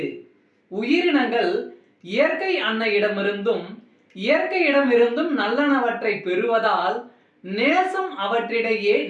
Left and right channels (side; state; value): both; identical; correlation 1.00